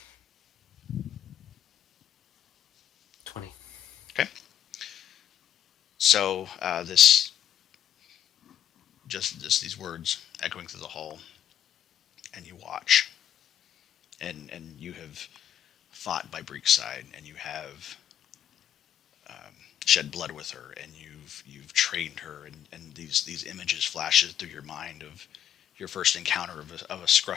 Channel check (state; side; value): quieter; right; 10.1 dB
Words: Okay. So these words echoing through the hall, and you watch, and you have fought by Breek's side, and you have shed blood with her, and you've trained her, and these images flashes through your mind of your first encounter of a